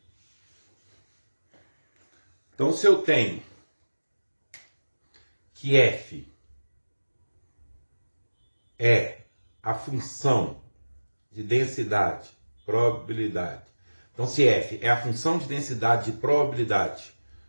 Então, se eu tenho que f é a função de densidade, probabilidade. Então, se f é a função de densidade de probabilidade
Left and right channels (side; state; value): both; inverted; correlation -1.00